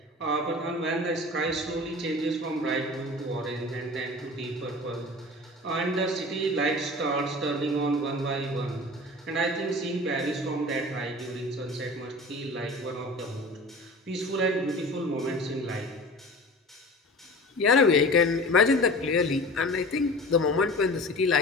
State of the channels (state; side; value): normal; both; correlation 0.38